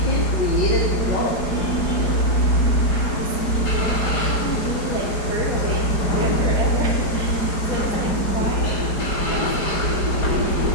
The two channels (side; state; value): right; late; 4.9 ms